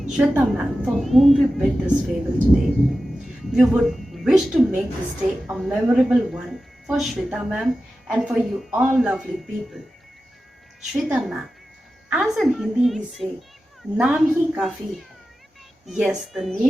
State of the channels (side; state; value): both; normal; correlation 0.93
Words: Shweta ma'am, for whom we bid this farewell today. We would wish to make this day a memorable one for Shweta ma'am and for you all lovely people. Shweta ma'am, as in Hindi we say, नाम ही काफी है. Yes, the